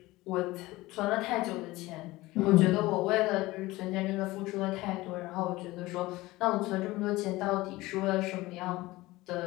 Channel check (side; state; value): right; quieter; 19.4 dB